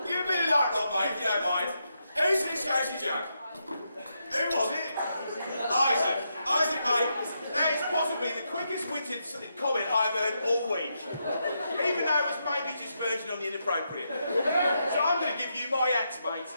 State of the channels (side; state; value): both; inverted; correlation -0.82